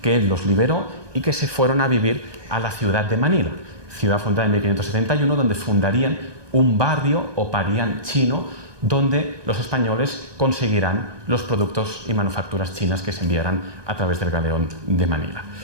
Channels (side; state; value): left; late; 1.2 ms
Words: que él los liberó y que se fueron a vivir a la ciudad de Manila, ciudad fundada en 1571, donde fundarían un barrio o parián chino, donde los españoles conseguirán los productos y manufacturas chinas que se enviarán a través del galeón de Manila.